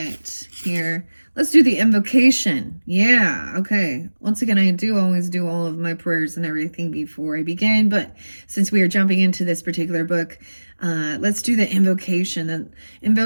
here. Let's do the invocation. Yeah, okay. Once again, I do always do all of my prayers and everything before I begin, but since we are jumping into this particular book, let's do the invocation.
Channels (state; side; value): inverted; both; correlation -1.00